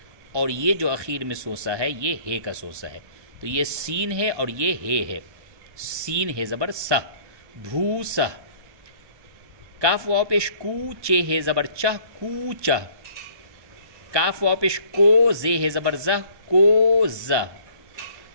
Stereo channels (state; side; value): late; left; 1.1 ms